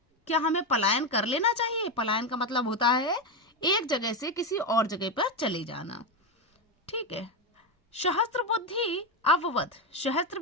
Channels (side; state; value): both; normal; correlation 0.11